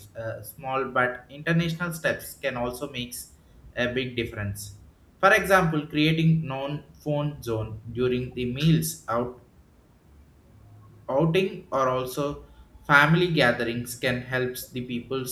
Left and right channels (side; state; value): both; identical; correlation 1.00